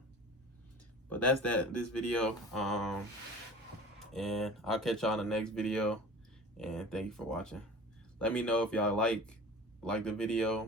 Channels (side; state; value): both; normal; correlation 0.39